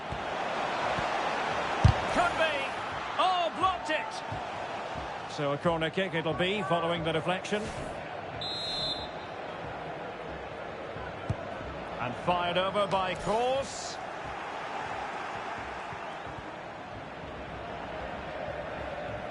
Could be. Oh, blocked it. So a corner kick it'll be following the deflection. And fired over by Kroos.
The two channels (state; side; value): identical; both; correlation 1.00